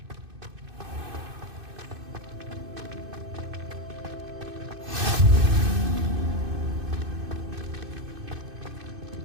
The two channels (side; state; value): left; late; 2.6 ms